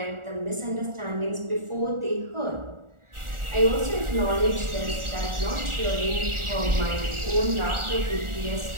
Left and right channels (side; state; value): left; late; 1.4 ms